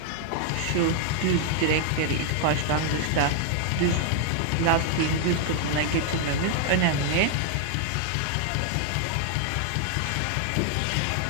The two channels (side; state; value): both; different; correlation 0.00